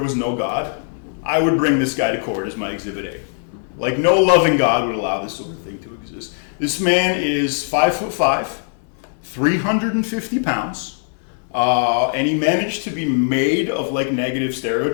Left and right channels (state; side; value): silent; right; digital silence